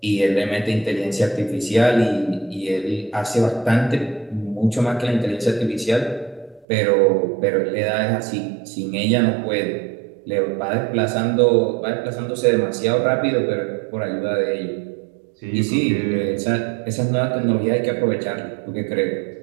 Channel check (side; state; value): left; drops out; at 6.7 s